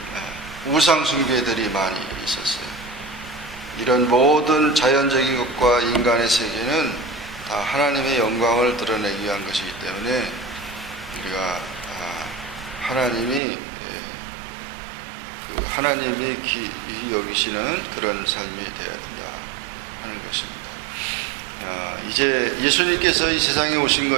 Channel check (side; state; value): left; drops out; at 13.4 s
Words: 우상 숭배들이 많이 있었어요. 이런 모든 자연적인 것과 인간의 세계는 다 하나님의 영광을 드러내기 위한 것이기 때문에 우리가 하나님이 귀히 여기시는 그런 삶이 되어야 된다 하는 것입니다. 이제 예수님께서 이 세상에 오신